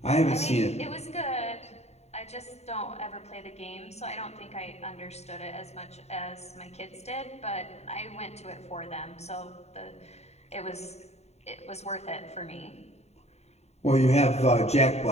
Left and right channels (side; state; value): right; late; 0.31 ms